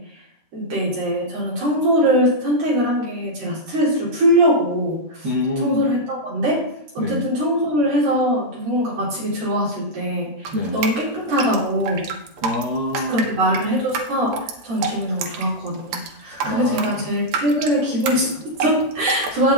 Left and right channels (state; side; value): late; left; 13 ms